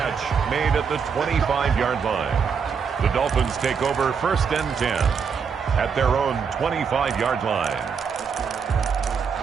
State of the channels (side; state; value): left; quieter; 6.3 dB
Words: made at the 25-yard line. The Dolphins take over 1st and 10 at their own 25-yard line.